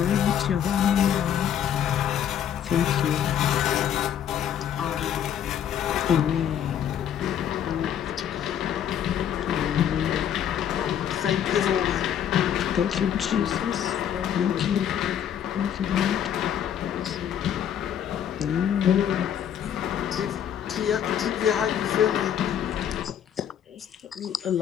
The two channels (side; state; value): right; quieter; 9.5 dB